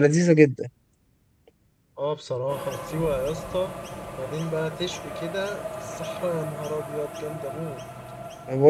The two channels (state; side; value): identical; both; correlation 1.00